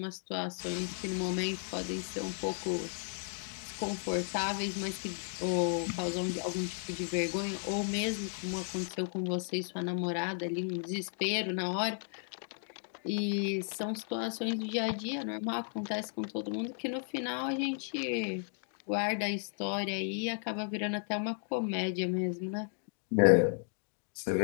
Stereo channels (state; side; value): silent; right; 55 dB below the other